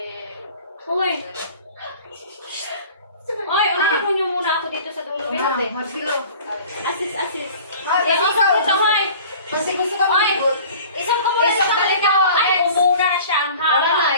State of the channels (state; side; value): inverted; both; correlation -0.45